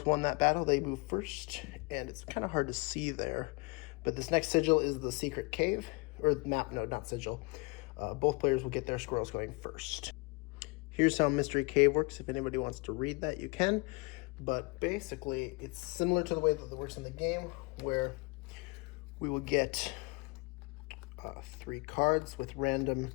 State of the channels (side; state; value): right; quieter; 28.3 dB